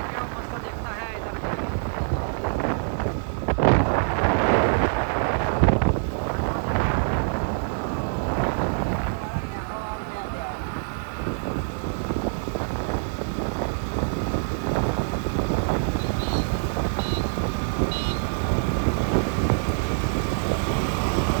કેવો મસ્ત દેખતા હે ઇધર.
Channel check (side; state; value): left; silent; 62 dB below the other